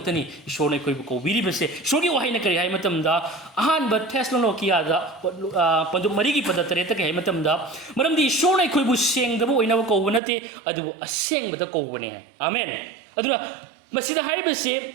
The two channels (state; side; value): drops out; left; at 10.2 s